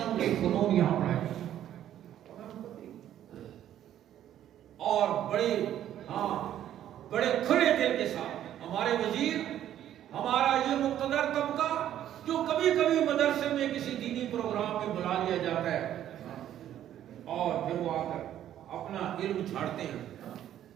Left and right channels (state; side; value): quieter; left; 11.4 dB